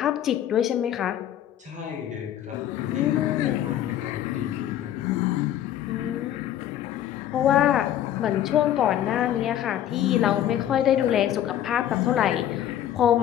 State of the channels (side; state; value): right; quieter; 11.4 dB